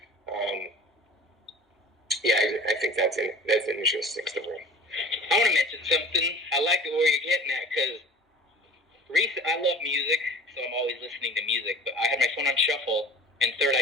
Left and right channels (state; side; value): normal; both; correlation 0.43